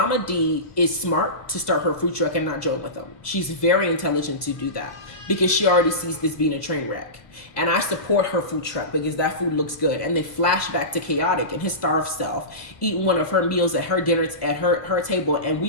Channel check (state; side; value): late; right; 1.5 ms